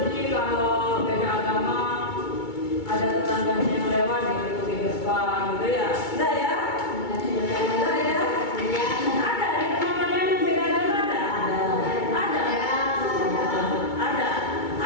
kalau beda agama ada tetangganya yang lewat gitu di depan gitu ya. Enggak ya? Enggak ya? Ada di tempat kalian yang beda agama ada? Ada. Ada.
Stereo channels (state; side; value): late; right; 2.2 ms